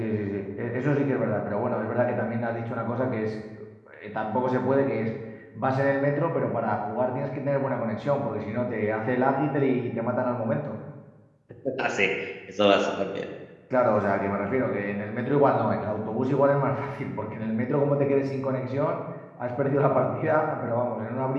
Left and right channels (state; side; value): identical; both; correlation 1.00